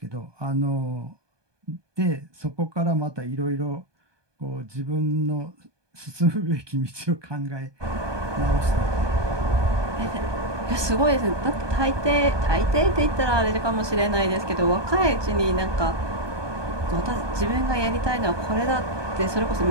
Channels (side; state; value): left; late; 1.2 ms